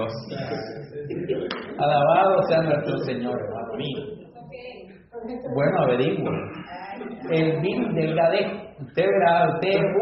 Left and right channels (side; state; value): both; identical; correlation 1.00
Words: Alabado sea nuestro Señor, hermano mío. Bueno, averigüe. El virus del gadejo. Usted verá, usted